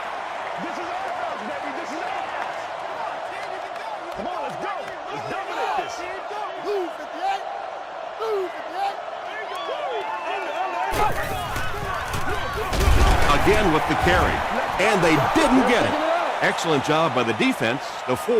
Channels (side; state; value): both; identical; correlation 1.00